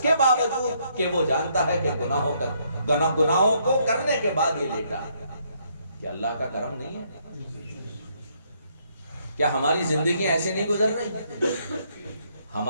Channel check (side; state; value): both; inverted; correlation -0.71